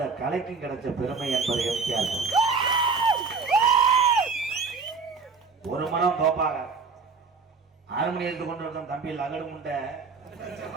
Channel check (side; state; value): left; quieter; 4.8 dB